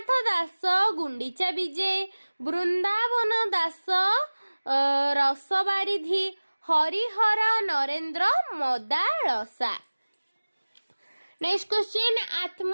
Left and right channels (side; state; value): both; inverted; correlation -1.00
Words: ଦାସ ଗୁଣ୍ଡିଚା ବିଜେ। ବୃନ୍ଦାବନ ଦାସ ରସ ବାରିଧି। ହରିହର ନରେନ୍ଦ୍ର ମଦାଳସା। ନେକ୍ସଟ କ୍ୱେଶ୍ଚିନ୍,